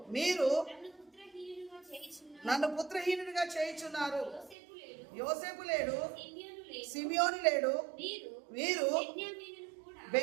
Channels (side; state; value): left; drops out; at 4.5 s